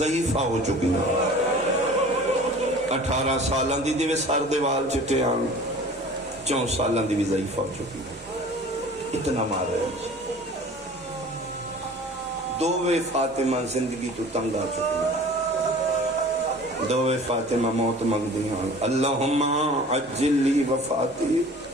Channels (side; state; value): both; normal; correlation 0.44